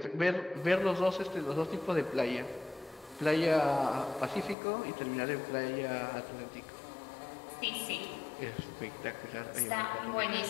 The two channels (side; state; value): right; drops out; at 4.5 s